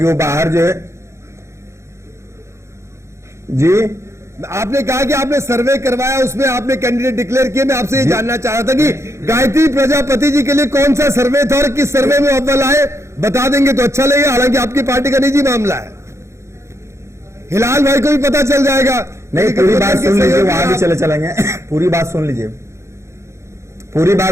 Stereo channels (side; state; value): left; late; 0.14 ms